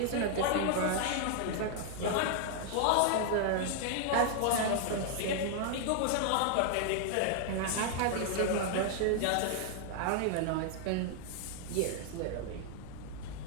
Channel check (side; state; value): both; different; correlation 0.00